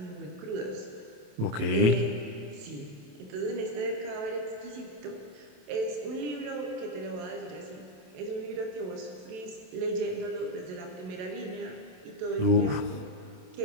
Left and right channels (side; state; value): left; late; 27 ms